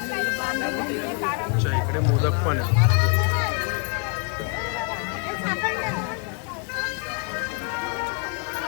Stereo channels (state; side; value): quieter; right; 34.9 dB